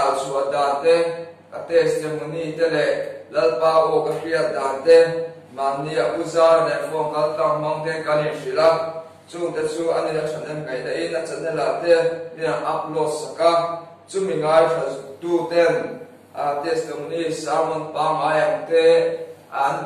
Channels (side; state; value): both; identical; correlation 1.00